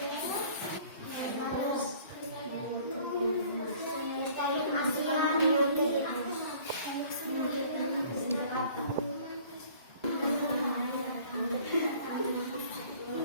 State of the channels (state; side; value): inverted; both; correlation -0.52